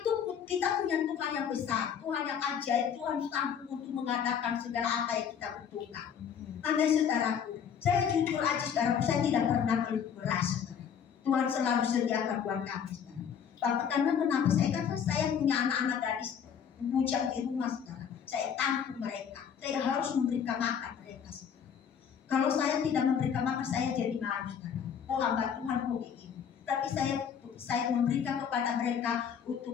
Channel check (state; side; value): quieter; right; 7.8 dB